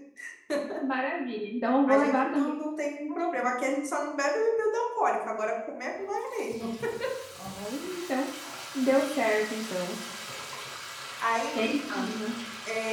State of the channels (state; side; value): identical; both; correlation 1.00